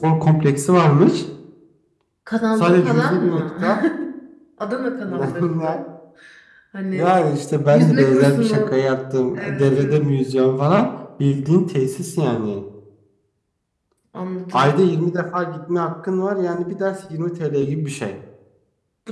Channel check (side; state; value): both; identical; correlation 1.00